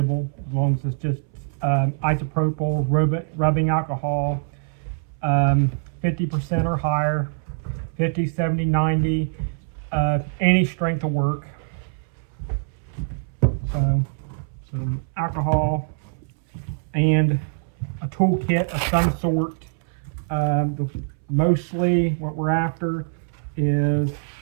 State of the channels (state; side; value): silent; left; 63 dB below the other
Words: as long as it's just isopropyl rubbing alcohol, 50% or higher, 50, 70, 90, any strength will work. So some alcohol and a toolkit of some sort. Mostly what we're after is